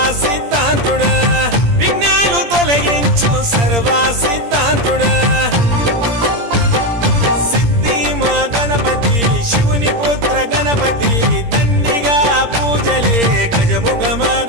సిద్ధాంతుడా విఘ్నాలు తొలగించు సర్వ సిద్ధాంతుడా సిద్ధి మా గణపతి శివుని పుత్ర గణపతి దండిగా పూజలే గజముఖమ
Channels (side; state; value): left; late; 17 ms